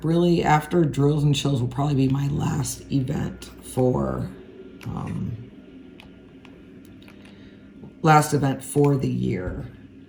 really, after Drills and Chills will probably be my last event for the year.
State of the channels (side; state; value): both; identical; correlation 1.00